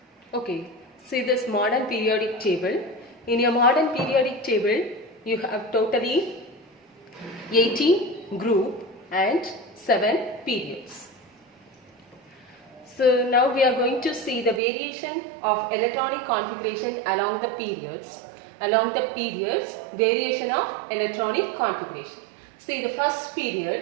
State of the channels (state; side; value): drops out; left; at 14.6 s